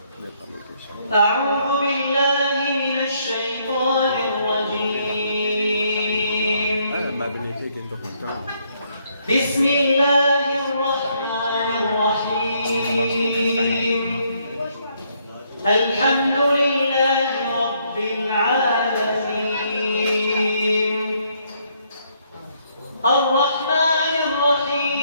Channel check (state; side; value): inverted; both; correlation -0.71